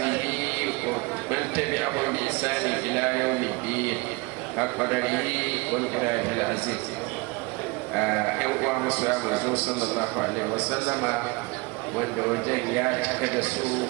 ومن تبعهم بإحسان إلى يوم الدين حق قدره ومقداره العزيز. uwa musu ya manzo sallallahu alaihi wasallama wanda wajen ya cika da su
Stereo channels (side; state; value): left; quieter; 25.8 dB